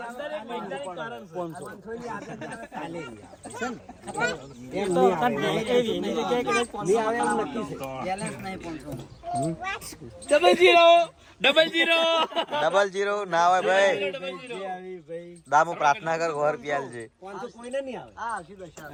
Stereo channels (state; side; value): identical; both; correlation 1.00